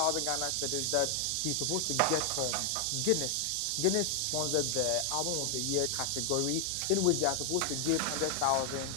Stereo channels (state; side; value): different; both; correlation 0.00